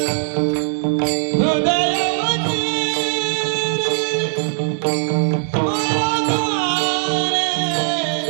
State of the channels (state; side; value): silent; left; 59 dB below the other